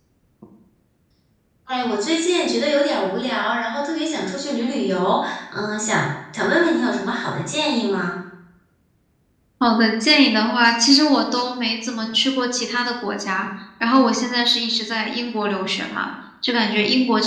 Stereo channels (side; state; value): both; identical; correlation 1.00